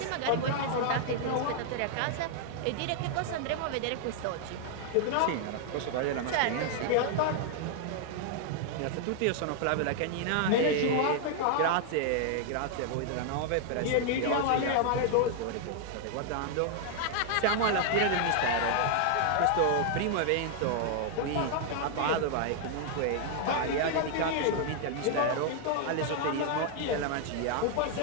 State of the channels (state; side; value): different; both; correlation 0.00